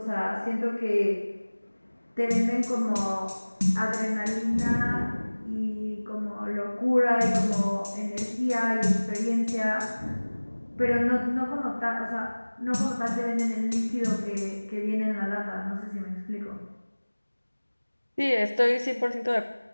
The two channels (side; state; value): both; inverted; correlation -1.00